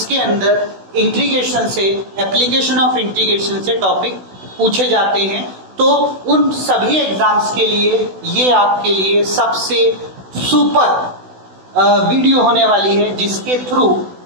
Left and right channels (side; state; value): left; late; 16 ms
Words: अंदर इंटीग्रेशन से, एप्लीकेशन ऑफ इंटीग्रेशन से टॉपिक पूछे जाते हैं। तो उन सभी एग्जाम्स के लिए ये आपके लिए सबसे सुपर वीडियो होने वाली है, जिसके थ्रू